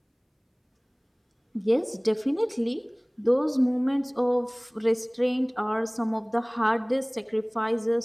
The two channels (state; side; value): identical; both; correlation 1.00